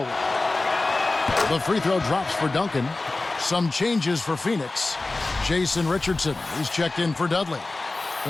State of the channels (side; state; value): right; quieter; 3.2 dB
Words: The free throw drops for Duncan. Some changes for Phoenix. Jason Richardson, he's checked in for Dudley.